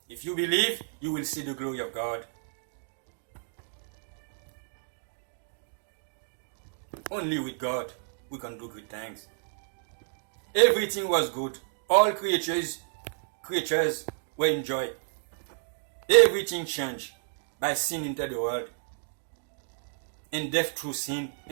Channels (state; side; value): silent; left; digital silence